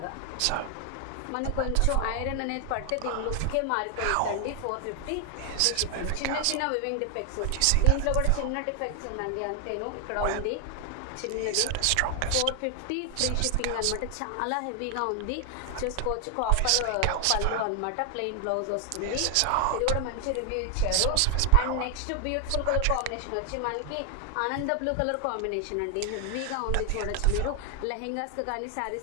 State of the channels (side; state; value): both; different; correlation 0.00